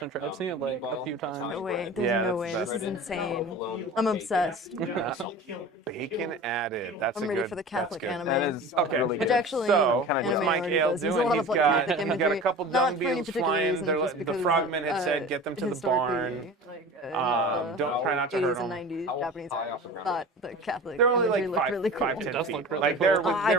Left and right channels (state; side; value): normal; both; correlation 0.36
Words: sure. I've seen it like a few times. No way. There's Yeah, no that's way. best. This is insane. I'm obsessed. Bacon added. That's I'm a ready good. for the That's Catholic good. anime. That is Okay. really Which good. actually, So, Kinda what's does. Mike already Ale does. There's a doing? lot He's of, like, got graphic imagery. a couple Not dung for any beetles particular flying. reason, They're just the because, frogman had said, "Get them to the barn." Don't try not to 80s hurt and them. 90s Japanese thought the Catholic They're only like imagery looked really cool. 5, 10 does feet. look really Like cool. Oh, I they're